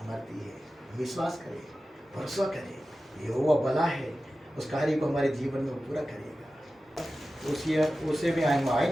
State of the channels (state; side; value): normal; both; correlation 0.94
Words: है। विश्वास करें, भरोसा करें, यहोवा भला है, उस कार्य को हमारे जीवन में पूरा करेगा। उसे भी हम